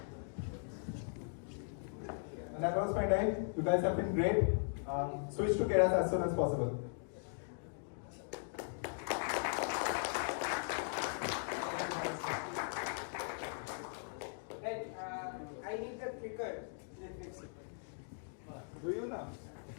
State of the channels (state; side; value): silent; right; digital silence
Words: And that was my time. You guys have been great. Switch to Keras as soon as possible. Right, I need the clicker. Do you now?